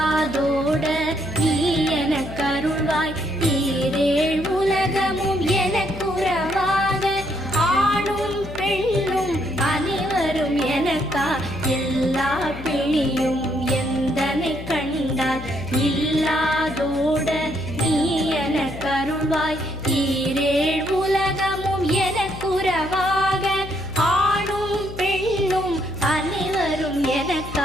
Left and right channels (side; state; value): left; noise; hum, 11 dB below the sound